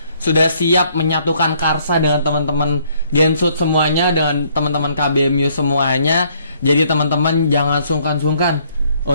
sudah siap menyatukan karsa dengan teman-teman Gensut semuanya, dengan teman-teman KBMU semuanya. Jadi teman-teman jangan sungkan-sungkan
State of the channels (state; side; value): inverted; both; correlation -0.66